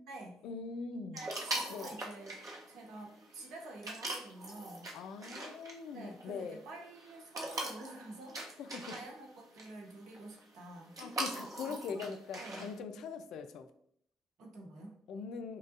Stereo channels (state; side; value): normal; both; correlation 0.57